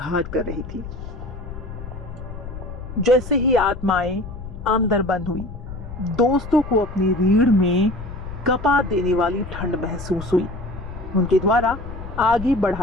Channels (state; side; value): noise; left; rumble, 10 dB below the sound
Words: कर रही थी। जैसे ही आत्माएं अंदर बंद हुई, दोस्तों को अपनी रीढ़ में कपा देने वाली ठंड महसूस हुई। उनके द्वारा आगे